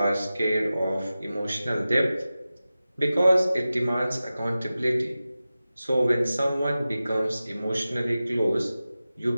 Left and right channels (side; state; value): both; inverted; correlation -0.95